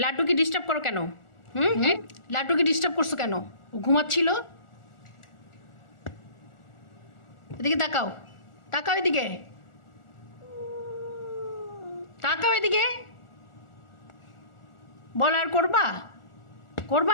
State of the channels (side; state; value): right; late; 1.4 ms